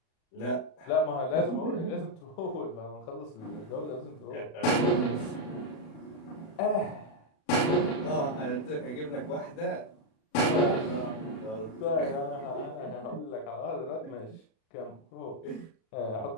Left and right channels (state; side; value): late; right; 37 ms